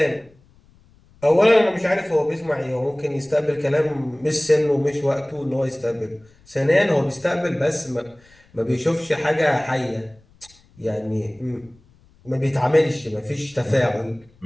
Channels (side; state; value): left; noise; rumble, 30 dB below the sound